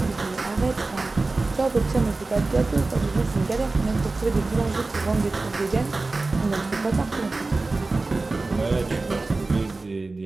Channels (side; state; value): left; quieter; 3.4 dB